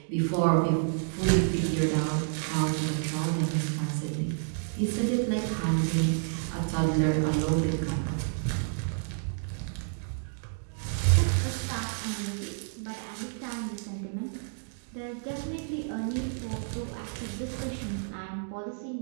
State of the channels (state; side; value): silent; left; digital silence